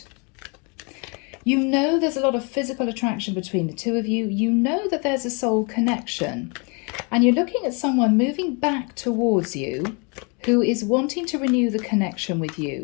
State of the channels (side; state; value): right; quieter; 32.9 dB